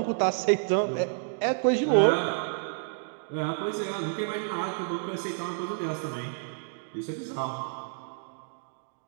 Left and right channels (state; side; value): silent; left; digital silence